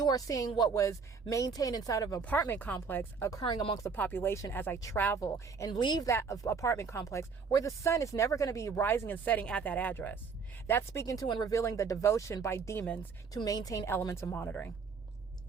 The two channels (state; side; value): quieter; left; 5.4 dB